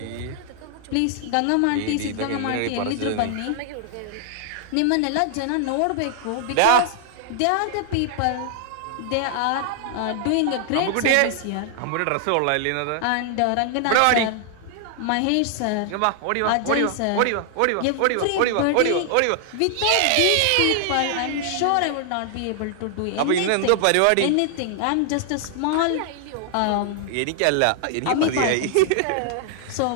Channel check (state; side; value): different; both; correlation 0.00